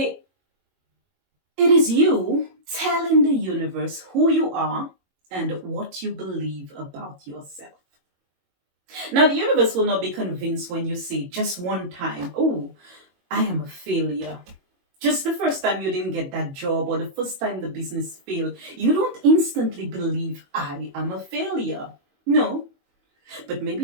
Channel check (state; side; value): late; left; 22 ms